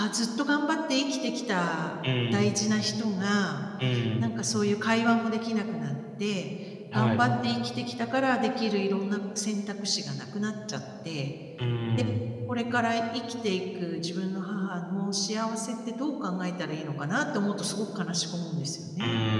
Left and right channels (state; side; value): identical; both; correlation 1.00